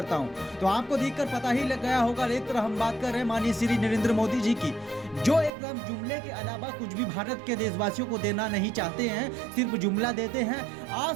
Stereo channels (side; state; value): left; drops out; at 5.5 s